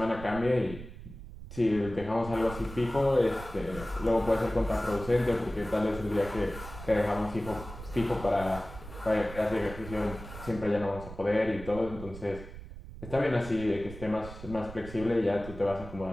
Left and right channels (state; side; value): noise; right; rumble, 13 dB below the sound